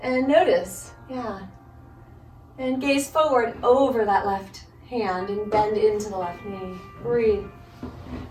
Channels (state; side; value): identical; both; correlation 1.00